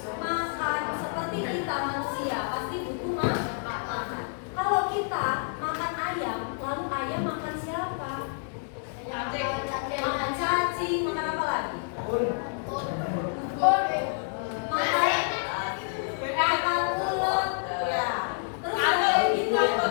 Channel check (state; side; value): silent; right; 59 dB below the other